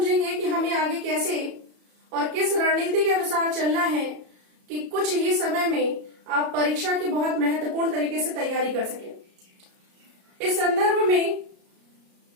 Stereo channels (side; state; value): left; late; 33 ms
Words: कि हमें आगे कैसे और किस रणनीति के अनुसार चलना है कि कुछ ही समय में आप परीक्षा की बहुत महत्वपूर्ण तरीके से तैयारी कर सकें। इस संदर्भ में